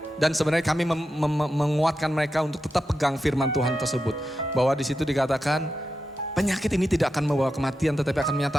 Dan sebenarnya kami menguatkan mereka untuk tetap pegang firman Tuhan tersebut. Bahwa di situ dikatakan penyakit ini tidak akan membawa kematian tetapi akan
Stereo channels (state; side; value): normal; both; correlation 0.89